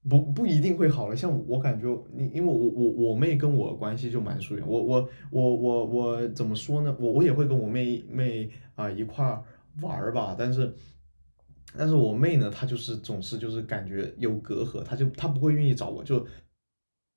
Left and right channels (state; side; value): inverted; both; correlation -1.00